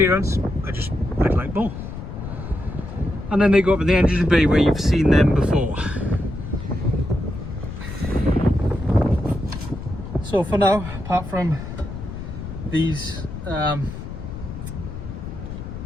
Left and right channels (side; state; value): left; noise; rumble, 9 dB below the sound